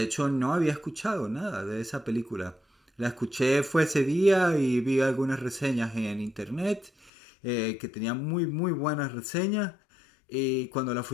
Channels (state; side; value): drops out; right; at 7.1 s